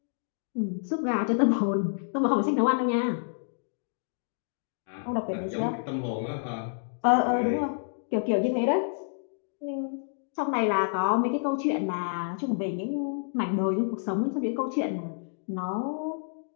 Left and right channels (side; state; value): right; silent; digital silence